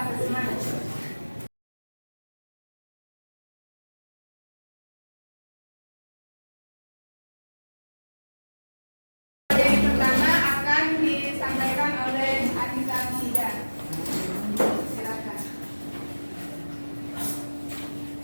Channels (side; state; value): both; inverted; correlation -1.00